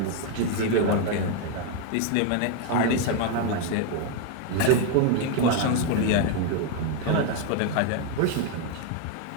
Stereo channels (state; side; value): different; both; correlation 0.01